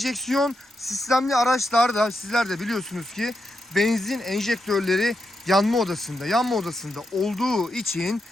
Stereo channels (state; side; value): normal; both; correlation 0.85